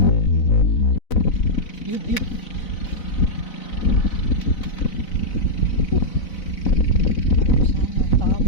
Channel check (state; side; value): late; right; 4.0 ms